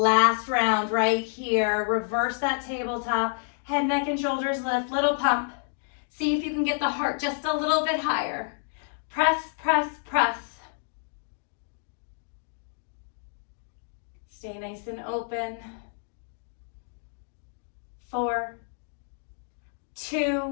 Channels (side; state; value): right; silent; digital silence